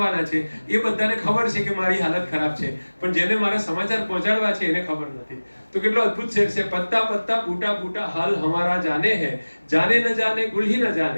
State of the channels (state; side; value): inverted; both; correlation -1.00